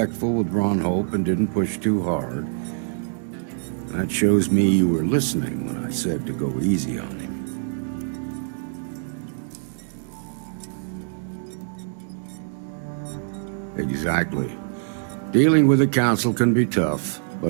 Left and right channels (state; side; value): silent; left; digital silence